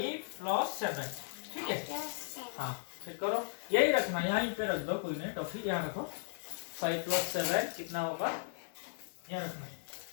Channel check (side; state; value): right; silent; 54 dB below the other